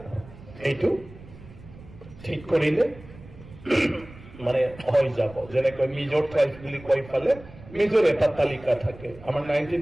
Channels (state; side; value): noise; right; rumble, 19 dB below the sound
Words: এইটো ঠিক কৰিলে মানে হৈ যাব যেনেকৈ মিজৰ ট্ৰাইব বুলি কৈ পালে মিজৰ এটা তালিকা থাকে আমাৰ